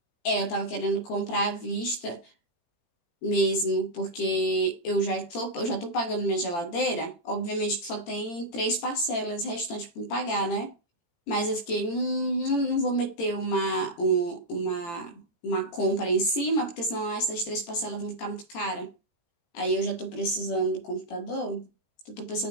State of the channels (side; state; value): right; late; 18 ms